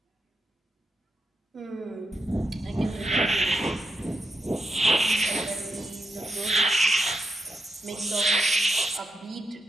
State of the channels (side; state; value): both; normal; correlation 0.85